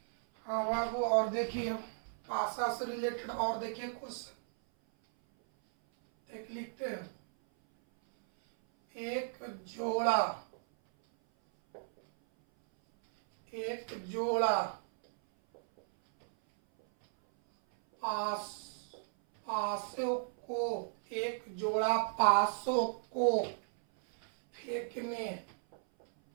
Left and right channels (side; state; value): left; silent; 54 dB below the other